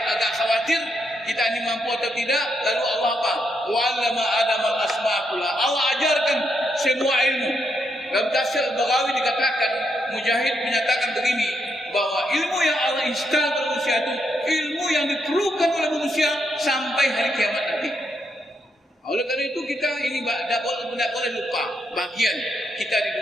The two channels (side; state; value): both; normal; correlation 0.79